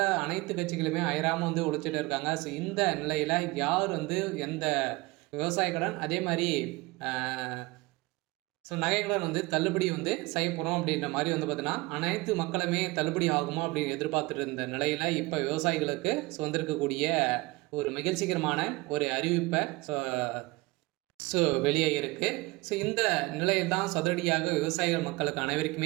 அனைத்து கட்சிகளுமே அயராமல் உழைச்சிட்டு இருக்காங்க. இந்த நிலையில் யார் எந்த விவசாய கடன் அதே மாதிரி நகை கடன் தள்ளுபடி செய்ய போகிறோம் அப்படின்ற மாதிரி பார்த்தீங்கன்னா அனைத்து மக்களுமே தள்ளுபடி ஆகுமா அப்படின்னு எதிர்பார்த்துட்டு இருந்த நிலையில் இப்போ விவசாயிகளுக்கு வந்திருக்கக்கூடிய ஒரு மகிழ்ச்சிகரமான ஒரு அறிவிப்பை வெளியே இருக்குது. இந்த நிலையில் தான் அதிரடியாக விவசாயிகள் மக்களுக்கு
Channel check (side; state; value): left; quieter; 22.5 dB